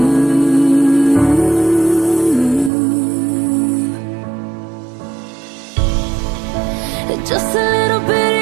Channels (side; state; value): left; drops out; at 2.7 s